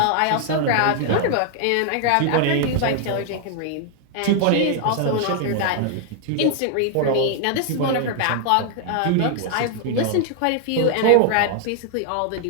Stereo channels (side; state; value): both; different; correlation 0.00